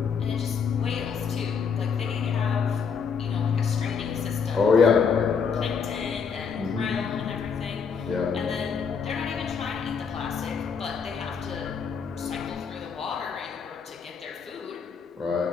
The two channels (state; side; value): quieter; right; 6.1 dB